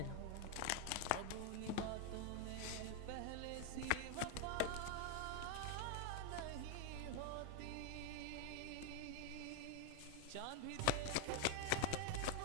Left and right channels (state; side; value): different; both; correlation 0.01